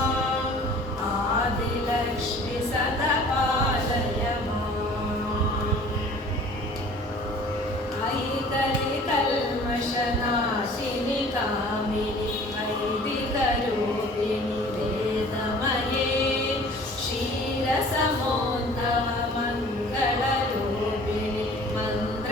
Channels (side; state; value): both; normal; correlation 0.48